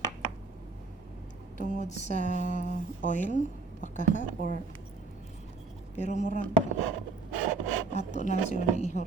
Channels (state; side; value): quieter; left; 3.8 dB